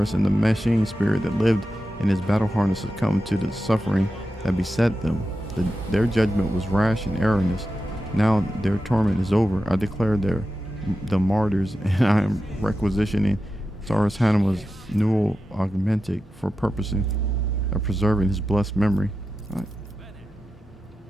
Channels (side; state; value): both; normal; correlation 0.91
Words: and the machine spirit that lived in his battle harness succumbed to the suffering that beset them. Their judgment was rash and erroneous. Now their torment is over. I declare the martyrs, and I am requisitioning Taurus Hanama's neural augmentic for purposing of preserving his blessed memory. Right.